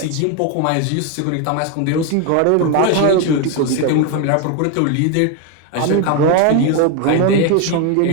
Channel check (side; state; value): both; different; correlation 0.02